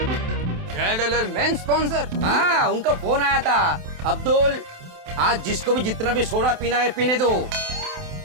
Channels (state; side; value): late; left; 27 ms